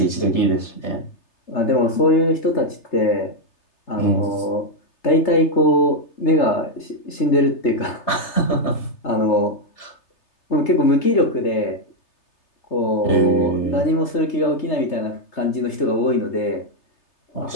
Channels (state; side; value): late; right; 3.3 ms